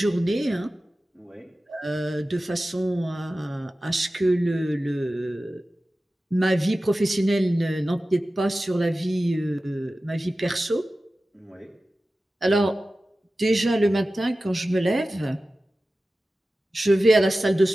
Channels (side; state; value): both; normal; correlation 0.95